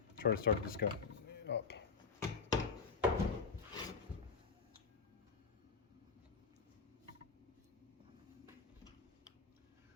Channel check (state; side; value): quieter; right; 5.4 dB